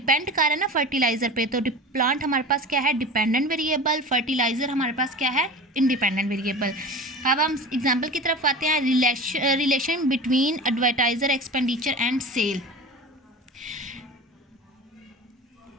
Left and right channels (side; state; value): both; normal; correlation 0.33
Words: कर रहा है ना फर्टिलाइज़र पे. तो प्लांट हमारे पास क्या है? Dependent variable. फर्टिलाइज़र हमारे पास क्या है? Independent variable. अब हम एग्जाम्पल की तरफ आते हैं. Relation between advertiser expenditure and sale.